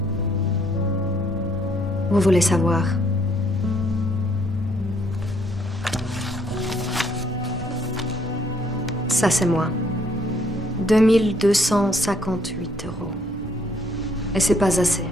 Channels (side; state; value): both; normal; correlation 0.67